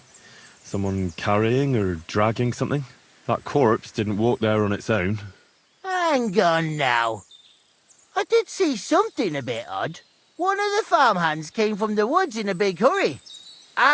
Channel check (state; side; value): identical; both; correlation 1.00